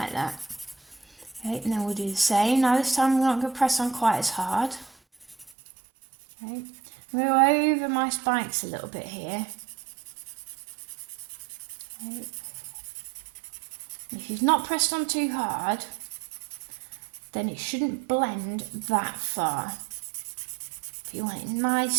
that. Okay, and then we'll do the same. Now this time we're not going to press on quite as hard. Okay, move over my spikes a little bit here. Okay. If you've not pressed on too hard, then it shouldn't blend that far. But you want it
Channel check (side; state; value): left; drops out; at 5.5 s